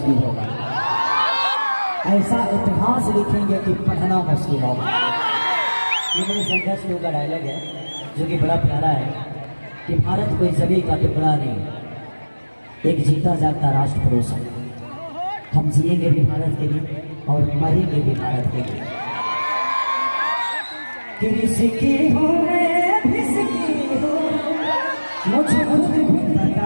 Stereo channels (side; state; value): both; inverted; correlation -1.00